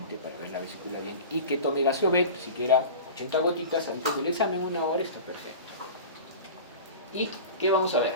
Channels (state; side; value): inverted; both; correlation -0.35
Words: para ver la vesícula bien, y que tome Gaseovet, siquiera 80 gotitas antes del examen, 1 hora, está perfecto. ¿Y qué vamos a ver?